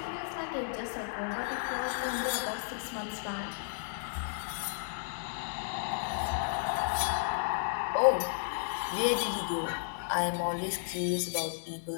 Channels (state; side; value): silent; right; digital silence